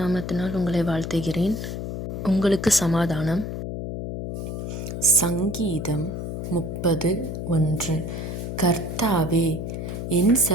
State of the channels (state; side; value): noise; left; hum, 5 dB below the sound